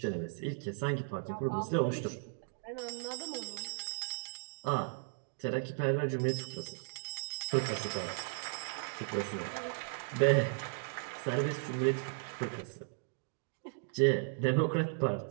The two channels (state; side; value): silent; left; digital silence